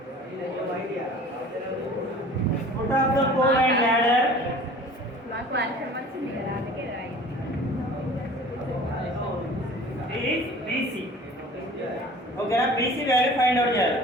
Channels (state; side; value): normal; both; correlation 0.45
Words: foot of the pole and ladder మాకు వర్షం వచ్చింది కదా అందుకే రాయింది. is BC. ఓకేనా, BC వాల్యూ ఫైండ్ అవుట్ చేయాలి.